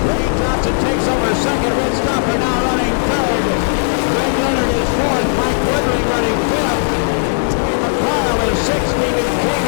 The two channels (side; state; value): right; silent; digital silence